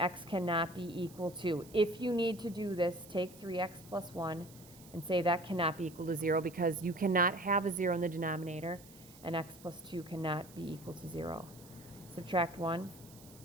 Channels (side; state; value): right; noise; hiss, 21 dB below the sound